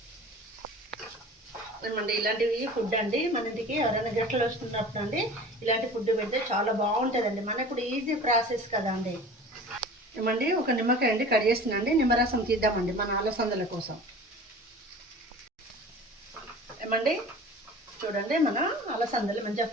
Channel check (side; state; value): both; normal; correlation 0.40